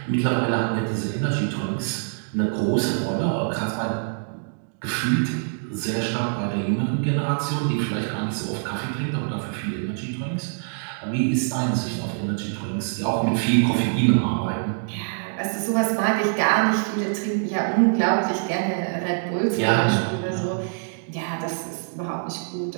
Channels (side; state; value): left; silent; digital silence